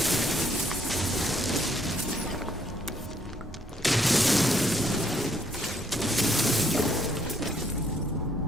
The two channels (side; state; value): both; normal; correlation 0.69